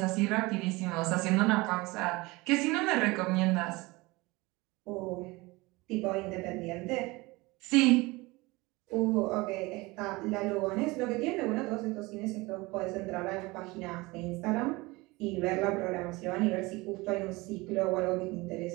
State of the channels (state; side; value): quieter; left; 22.8 dB